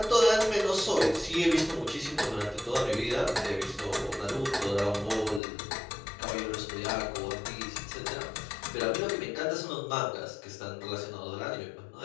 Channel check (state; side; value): drops out; right; at 5.4 s